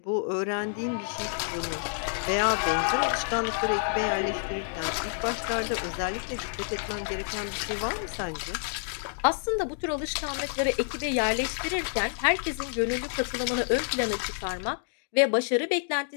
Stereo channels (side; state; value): right; silent; digital silence